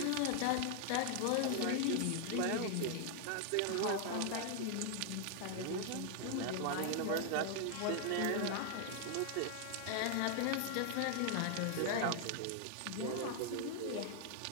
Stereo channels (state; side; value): different; both; correlation 0.00